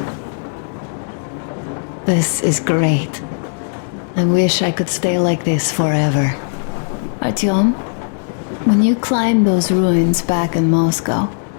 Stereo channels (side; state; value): right; silent; 66 dB below the other